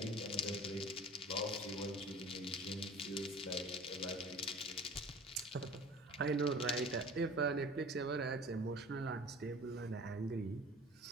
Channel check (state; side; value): normal; both; correlation 0.42